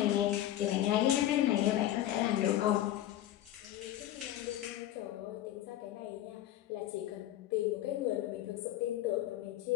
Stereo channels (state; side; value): quieter; right; 13.1 dB